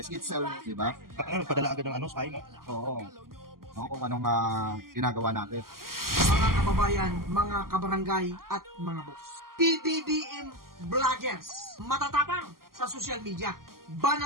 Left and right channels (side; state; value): left; late; 0.92 ms